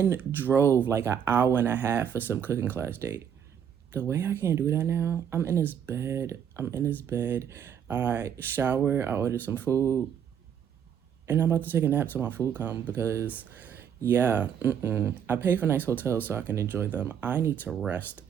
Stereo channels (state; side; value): quieter; left; 8.4 dB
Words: drove like an hour and a half for some cooking class date. The way I can't do that now, I'm in this bed. I shower, I order some food, and I'm about to take a nap till my food comes because, yeah, I pay for nice hotels so I can enjoy them. I need to rest,